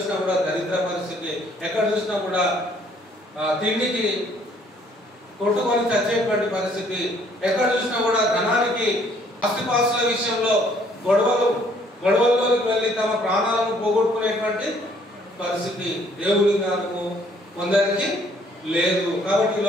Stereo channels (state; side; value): normal; both; correlation 0.63